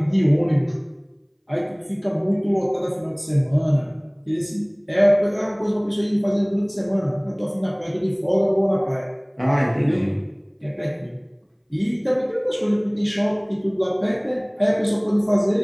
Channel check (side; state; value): both; identical; correlation 1.00